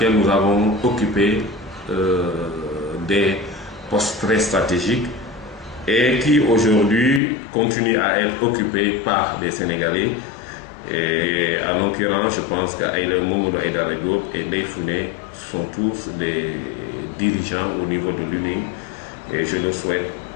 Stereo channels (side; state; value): right; drops out; at 7.2 s